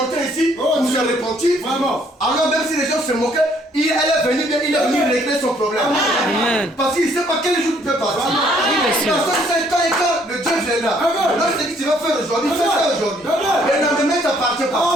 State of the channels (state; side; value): normal; both; correlation 0.64